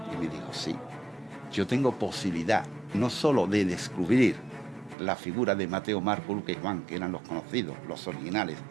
Y me dijo, sí. Yo tengo posibilidad no solo de descubrir la figura de Mateo, Marco, Lucas y Juan, que eran los conocidos, los originales,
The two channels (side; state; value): left; drops out; at 5.0 s